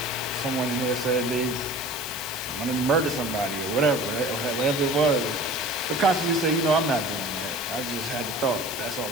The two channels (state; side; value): noise; left; hiss, 11 dB below the sound